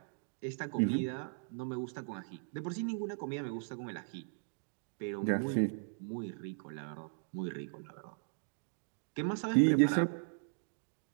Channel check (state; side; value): silent; left; digital silence